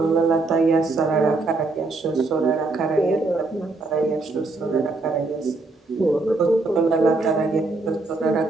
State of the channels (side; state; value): left; quieter; 3.4 dB